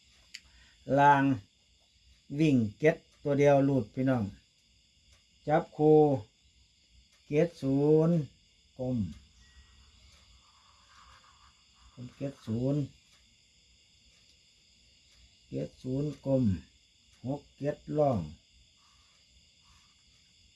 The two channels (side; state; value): both; identical; correlation 1.00